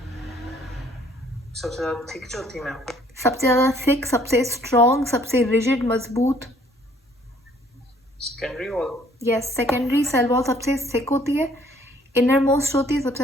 सबसे ज़्यादा थिक जो थी मैम, सबसे ज़्यादा थिक, सबसे स्ट्रॉन्ग, सबसे रिजिड मजबूत। Secondary wall. Yes, secondary cell wall सबसे थिक होती है, इनर मोस्ट होती है, सबसे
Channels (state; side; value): normal; both; correlation 0.61